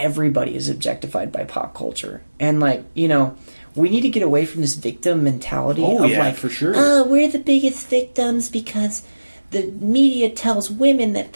is objectified by pop culture. And like, you know, we need to get away from this victim mentality of like, for sure. oh, we're the biggest victims because the media tells women that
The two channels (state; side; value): inverted; both; correlation -1.00